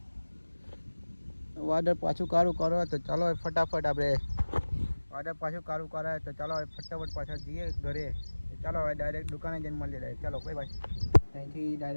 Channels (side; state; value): both; inverted; correlation -1.00